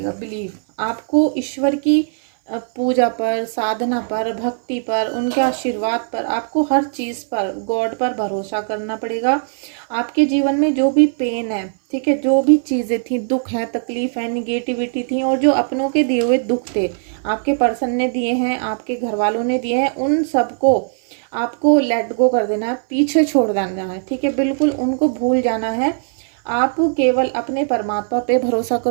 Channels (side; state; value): left; silent; 59 dB below the other